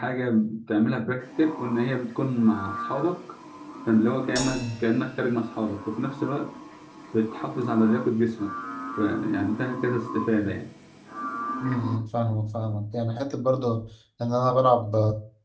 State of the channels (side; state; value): both; identical; correlation 1.00